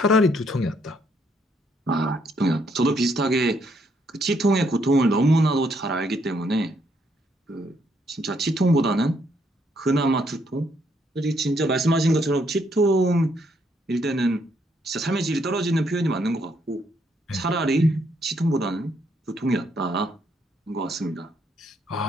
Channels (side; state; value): both; normal; correlation 0.72